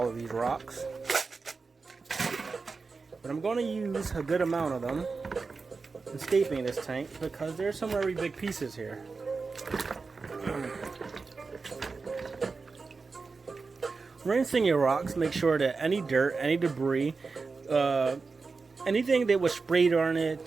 of these rocks, but I'm going to use a good amount of them in scaping this tank because there's some very big pieces here. Rinsing your rocks, make sure that any dirt, any debris, anything that was sprayed on it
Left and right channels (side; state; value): left; quieter; 4.4 dB